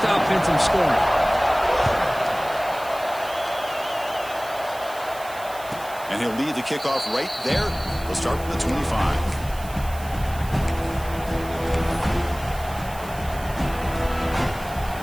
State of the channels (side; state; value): right; noise; hiss, 17 dB below the sound